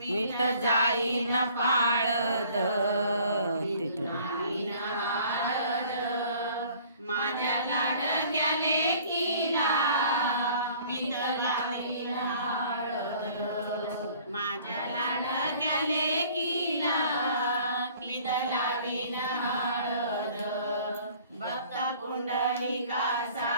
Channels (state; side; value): inverted; both; correlation -0.53